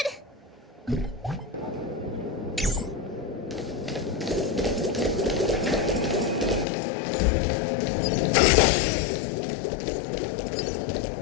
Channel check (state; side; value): drops out; right; at 6.7 s